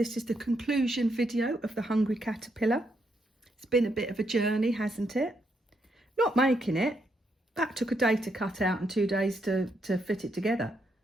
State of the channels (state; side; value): normal; both; correlation 0.78